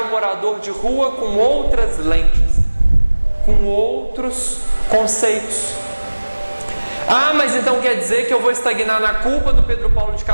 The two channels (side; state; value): both; inverted; correlation -1.00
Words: morador de rua com outras lentes, com outros conceitos. Ah, mas então quer dizer que eu vou estagnar na culpa do Pedro Paulo de